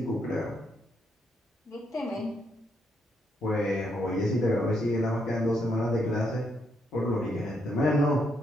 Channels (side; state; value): both; normal; correlation 0.77